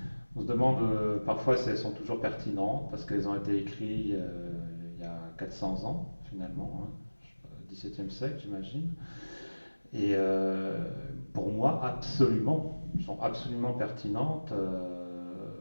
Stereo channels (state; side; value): inverted; both; correlation -1.00